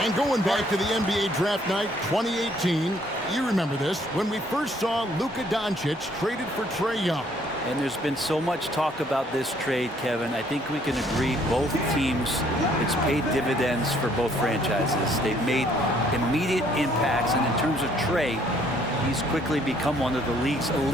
going back to the NBA draft night 2018, you remember this, when we first saw Luka Doncic traded for Trae Young. And there's been so much talk about this trade, Kevin. I think we can agree both teams, it's paid dividends for both franchises. They've made immediate impacts, and in terms of Trae, he's quickly become one of the league's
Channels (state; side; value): normal; both; correlation 0.64